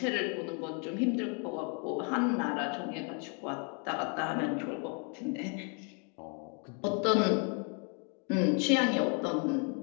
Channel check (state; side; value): quieter; right; 38.1 dB